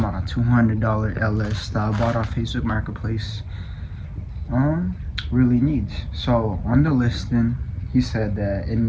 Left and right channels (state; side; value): identical; both; correlation 1.00